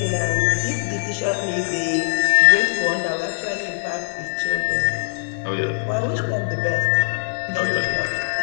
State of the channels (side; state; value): right; silent; 65 dB below the other